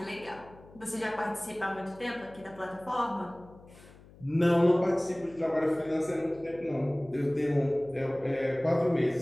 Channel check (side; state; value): left; noise; hum, 22 dB below the sound